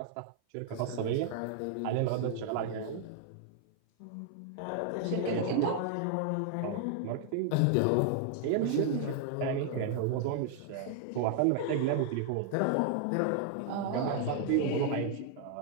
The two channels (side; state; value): both; different; correlation 0.00